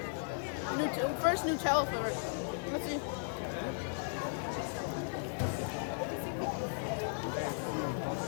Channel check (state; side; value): silent; right; 54 dB below the other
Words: First Nutella flavor. Let's see.